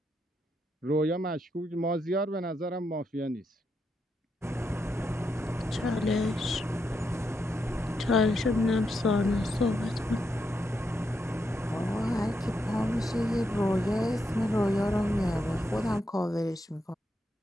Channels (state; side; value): normal; both; correlation 0.82